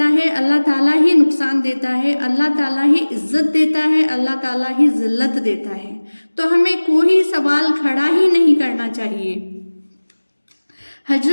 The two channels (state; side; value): inverted; both; correlation -1.00